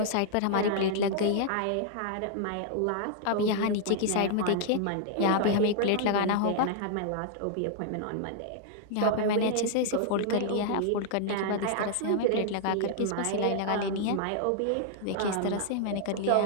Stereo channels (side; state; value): both; different; correlation -0.01